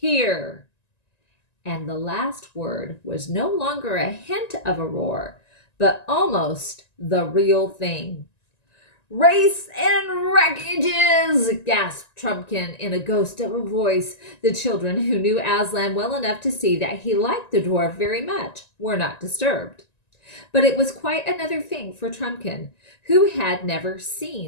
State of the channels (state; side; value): late; right; 1.9 ms